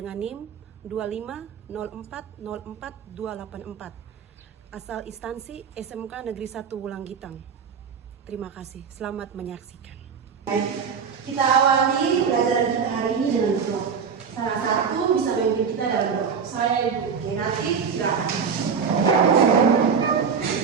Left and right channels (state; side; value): quieter; left; 6.3 dB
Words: NIM 250404284, asal instansi SMK Negeri 1 Wulanggitang. Terima kasih, selamat menyaksikan. Baik, kita awali pelajaran kita hari ini dengan doa. Salah satu bisa memimpin kita dalam doa. Saya Ibu. Oke, nanti silakan.